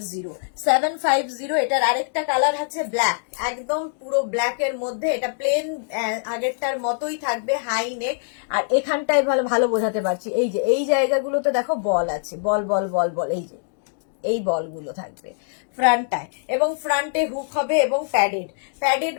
এটার আরেকটা কালার আছে ব্ল্যাক, একদম পুরো ব্ল্যাক এর মধ্যে। এটা প্লেন আগেরটার মতোই থাকবে, হাই নেক। আর এখানটায় ভালো বোঝাতে পারছি, এই যে এই জায়গাগুলোতে দেখো বল আছে, বল বল বল বল, এই যে এই বলগুলো থাকবে ফ্রন্টটায়, এবং ফ্রন্টে হুক হবে এবং প্যাডেড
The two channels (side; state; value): right; silent; digital silence